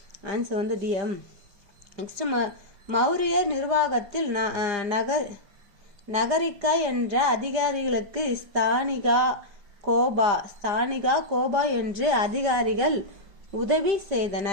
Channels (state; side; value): late; left; 5.0 ms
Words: ஆன்சர் வந்து டிஎம். நெக்ஸ்ட், மௌரியர் நிர்வாகத்தில் நகரிகா என்ற அதிகாரிகளுக்கு ஸ்தானிகா கோபா என்று அதிகாரிகள் உதவி